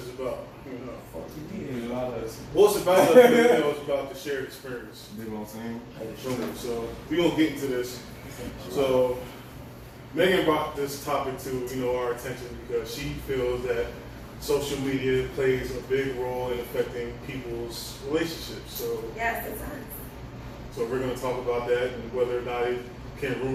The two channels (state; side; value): identical; both; correlation 1.00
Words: about Fuck you mean about us? well, it's about us. It's about the shared experience. You know what I'm saying? So we're gonna get into this. So Megan brought this topic to our attention because she feels that social media plays a big role in affecting people's relationships. So Yes, it does. so we're gonna talk about that and whether or not it can